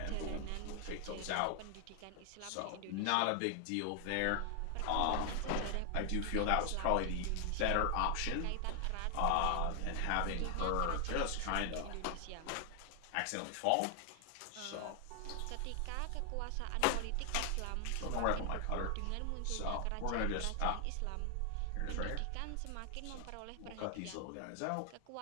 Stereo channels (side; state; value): both; different; correlation 0.00